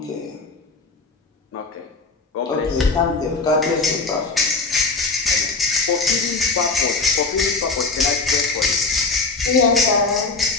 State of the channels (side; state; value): right; quieter; 3.9 dB